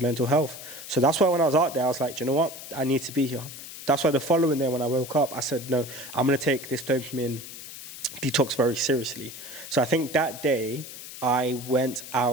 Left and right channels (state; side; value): noise; left; hiss, 12 dB below the sound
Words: mental health. So that's why when I was out there, I was like, you know what, I need to be here. That's why the following day when I woke up, I said, no, I'm going to take this dopamine detox very seriously. So I think that day I went